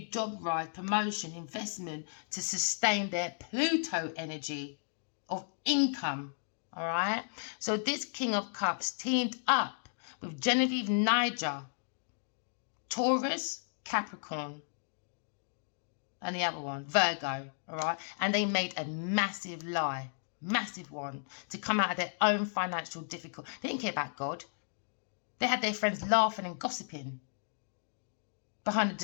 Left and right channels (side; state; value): right; silent; digital silence